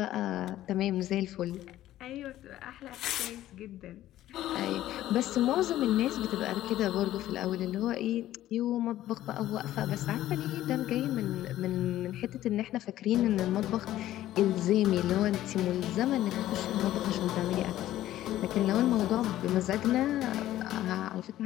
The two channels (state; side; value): quieter; right; 13.8 dB